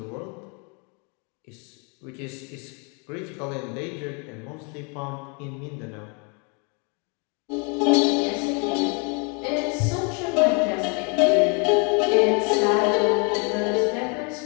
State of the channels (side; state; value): right; quieter; 34.8 dB